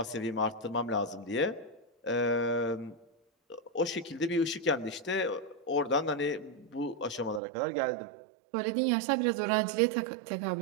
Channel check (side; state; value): left; drops out; at 7.4 s